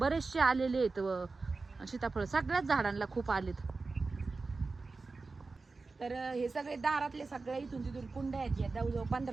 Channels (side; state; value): left; quieter; 3.9 dB